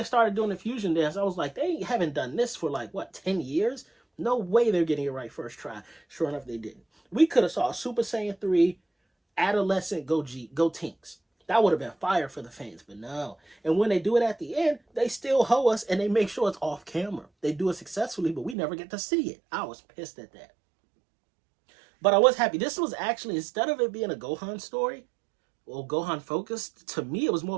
started doing the fusion dance, I was like, they haven't done this for like, what, 10 years? No way they're getting it right first try. Sure enough, they didn't. We could have saw a Super Saiyan 3 adolescent Gotenks. That would have been fire for the fans, but no. And when they do it at the end, they still hoe us and they make sure it's off camera. They do it successfully, but we never get to see it. I was pissed at that. But I was happy. This was actually, instead of it being a Gohan story, or Gohan focused, to me it was more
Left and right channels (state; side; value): drops out; left; at 18.6 s